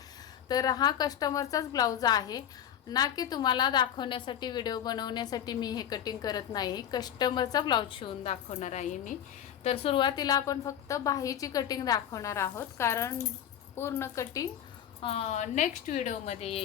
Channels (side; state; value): right; quieter; 9.9 dB